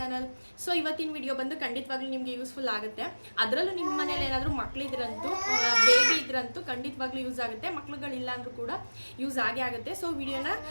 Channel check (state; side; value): inverted; both; correlation -1.00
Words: So ಇವತ್ತಿನ ವಿಡಿಯೋ ಬಂದು ಖಂಡಿತವಾಗ್ಲೂ ನಿಮಗೆ ಯೂಸ್ಫುಲ್ ಆಗುತ್ತೆ. ಅದರಲ್ಲೂ ನಿಮ್ಮ ಮನೇಲಿ ಏನಾದರೂ ಮಕ್ಕಳಿದ್ರಂತೂ ಬೇಬಿ ಇದ್ರಂತೂ ಖಂಡಿತವಾಗ್ಲೂ ಯೂಸ್ ಆಗುತ್ತೆ. ಮಕ್ಳುಗಳಿಲ್ಲ ಅಂದರೂ ಕೂಡ ಯೂಸ್ ಆಗೇ ಆಗುತ್ತೆ. ಸೊ ವಿಡಿಯೋನ